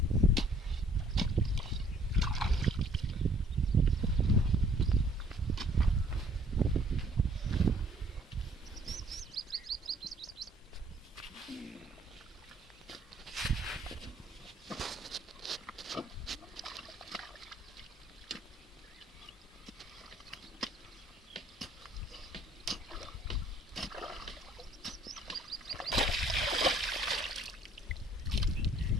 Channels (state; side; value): normal; both; correlation 0.58